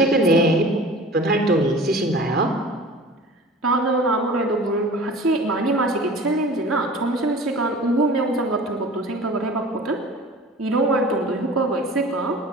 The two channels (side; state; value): both; normal; correlation 0.41